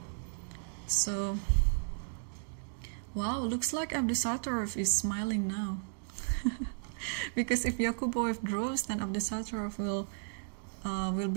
So, wow, looks like Abdusattorov is smiling now. Because if Yakubov draws, then Abdusattorov will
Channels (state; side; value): silent; left; digital silence